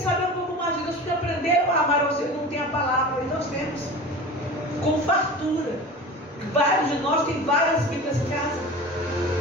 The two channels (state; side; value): normal; both; correlation 0.35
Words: um pouco mais de Deus, porque aprenderam a amar ao Senhor, não tem a palavra. E nós temos com fartura. Vários de nós têm várias Bíblias em casa.